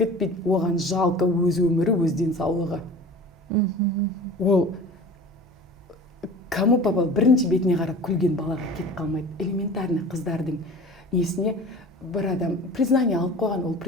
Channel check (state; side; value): normal; both; correlation 0.40